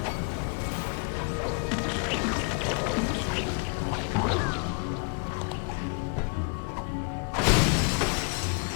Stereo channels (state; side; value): quieter; right; 36.3 dB